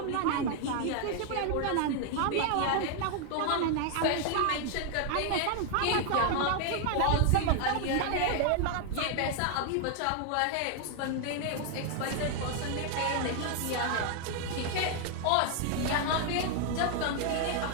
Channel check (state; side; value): different; both; correlation 0.00